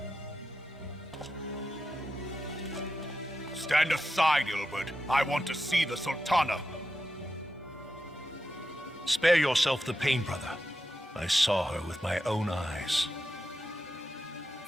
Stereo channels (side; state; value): both; normal; correlation 0.89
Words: Stand aside, Ilbert. I want to see the Sultana. Spare yourself the pain, brother. I saw her with my own eyes.